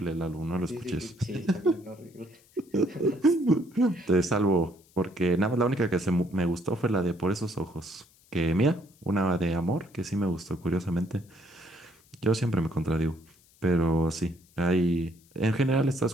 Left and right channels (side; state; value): left; noise; hiss, 30 dB below the sound